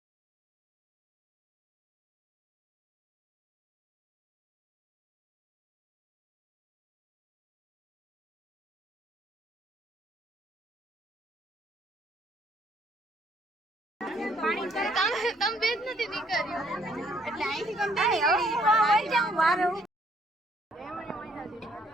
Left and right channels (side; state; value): both; normal; correlation 0.66